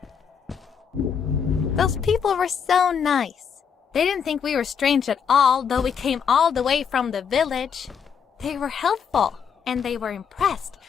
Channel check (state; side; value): quieter; right; 7.1 dB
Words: Those people were so nice. They didn't think we were strange at all, though we came all the way from the village. They were helpful, and they were impressed